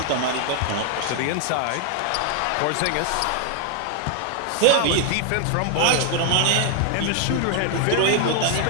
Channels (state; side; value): different; both; correlation 0.00